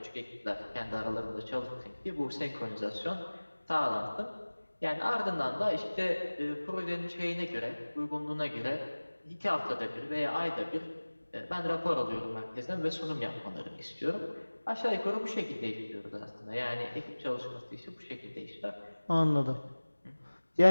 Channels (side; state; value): both; inverted; correlation -1.00